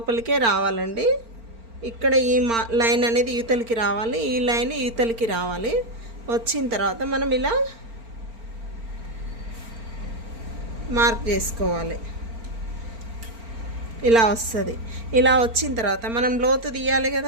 రావాలండి. ఇక్కడ ఈ లైన్ అనేది యువతలకి రావాలి, ఈ లైన్ యువతలకి రావాలి. వచ్చిన తర్వాత మనం ఇలా మార్క్ చేసుకోవాలి. ఇలా వస్తుంది. ఇలా వచ్చిన తర్వాత మనం లోతు తీయాలి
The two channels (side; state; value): left; late; 4.4 ms